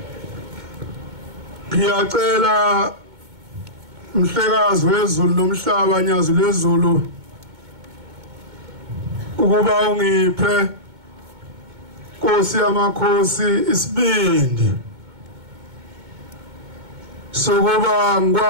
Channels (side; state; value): left; late; 2.2 ms